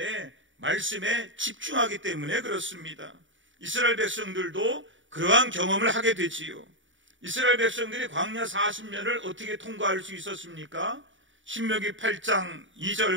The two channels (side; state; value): left; late; 0.56 ms